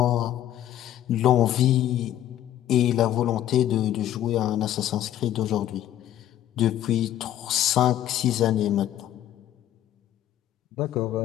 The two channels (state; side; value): quieter; right; 12.2 dB